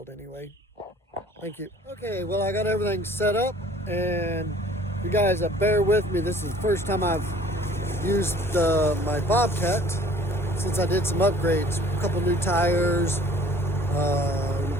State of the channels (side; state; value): both; normal; correlation 0.52